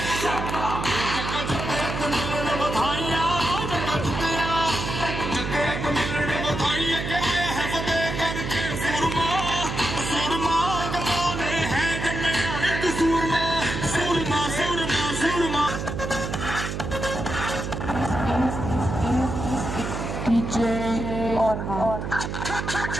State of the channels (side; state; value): right; noise; hum, 4 dB below the sound